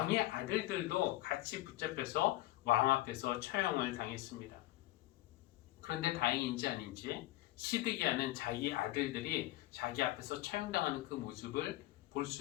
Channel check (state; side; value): quieter; right; 17.3 dB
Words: 아들들도 같이 붙잡혀서 왕 앞에서 처형을 당했습니다. 그런데 다행인지 아닌지 시드기야는 자기 아들들이 자기 앞에서 처형당하는 그 모습을 볼